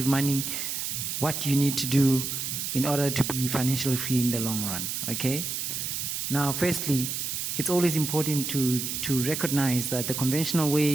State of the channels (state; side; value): noise; right; hiss, 3 dB below the sound